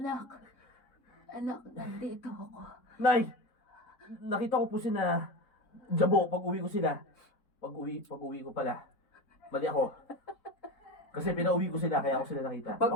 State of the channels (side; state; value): right; late; 4.1 ms